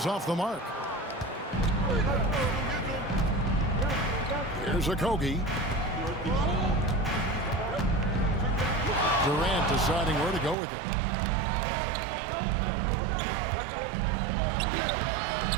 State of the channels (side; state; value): left; drops out; at 10.6 s